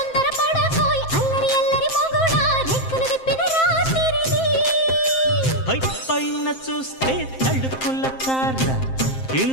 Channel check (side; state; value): right; late; 7.6 ms